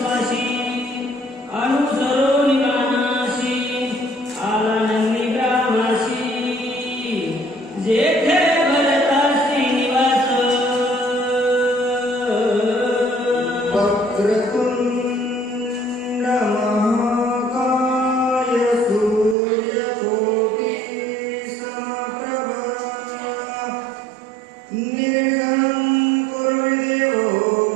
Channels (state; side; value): drops out; left; at 19.4 s